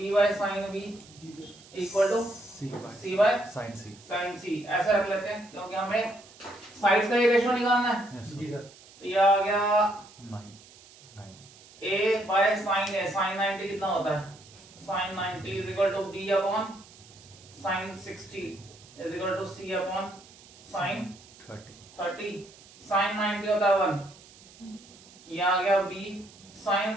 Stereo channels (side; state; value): right; noise; hiss, 23 dB below the sound